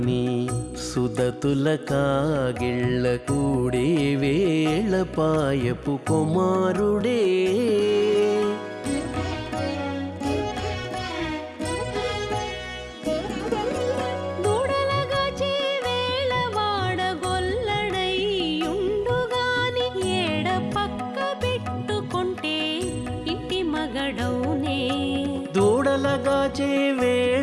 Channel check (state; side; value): identical; both; correlation 1.00